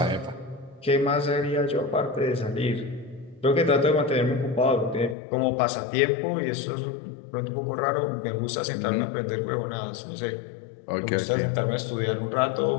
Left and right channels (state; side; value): drops out; right; at 5.2 s